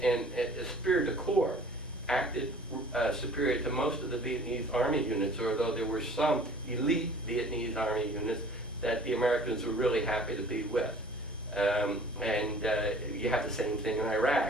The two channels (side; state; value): both; normal; correlation 0.49